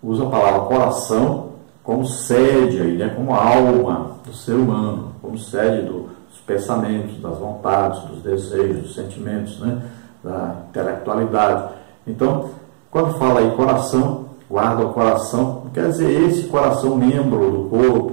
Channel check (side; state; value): left; silent; digital silence